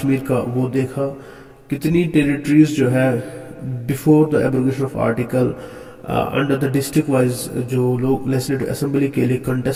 का वो देखा, कितनी टेरिटरीज जो है before the abrogation of article under the district wise जो लोग लेजिस्लेटिव असेंबली के लिए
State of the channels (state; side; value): identical; both; correlation 1.00